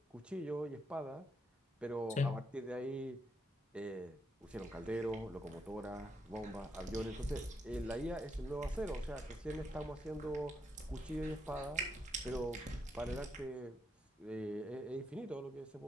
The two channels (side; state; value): both; normal; correlation 0.80